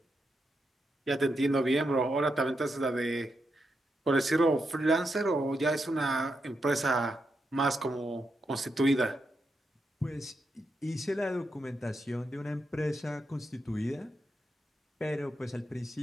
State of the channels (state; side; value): normal; both; correlation 0.84